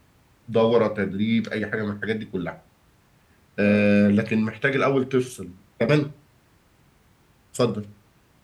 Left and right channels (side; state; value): both; identical; correlation 1.00